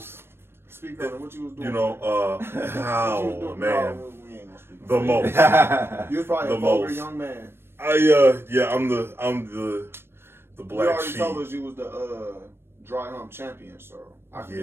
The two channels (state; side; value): late; left; 0.12 ms